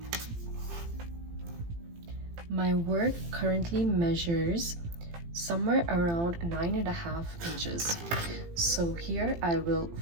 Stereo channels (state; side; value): late; left; 18 ms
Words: My work currently measures somewhere around 9.5 inches. So here I will